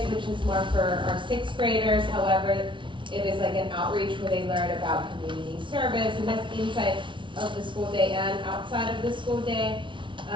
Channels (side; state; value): left; late; 0.24 ms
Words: which is more for our 6th graders. However, it is like an outreach where they learn about community service, and that's inside of the school day and outside of the school day